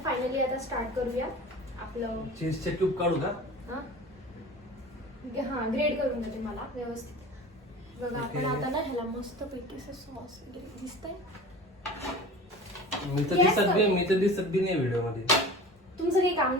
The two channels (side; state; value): both; normal; correlation 0.38